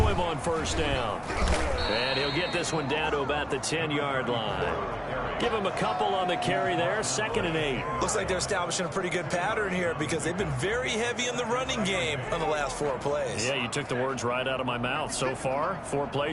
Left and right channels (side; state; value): both; identical; correlation 1.00